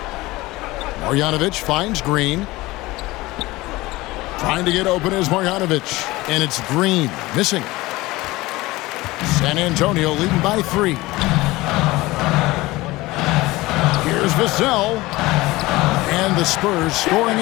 Marjanovic finds Green. Trying to get open is Marjanovic. And it's Green missing. San Antonio leading by 3. Here's Vassell. And the Spurs scoring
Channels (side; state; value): right; quieter; 19.9 dB